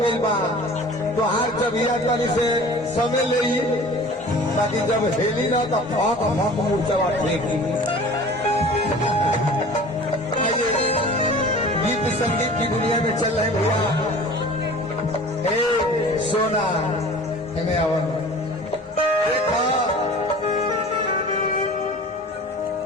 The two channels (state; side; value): normal; both; correlation 0.42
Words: गई बा तो हर चबिया तनी से समय ले ताकि जब हेली ना तो फक फक मूर्छा फेंकी। आइए गीत संगीत की दुनिया में चल रहे भैया हे सोना हमें आवन देखा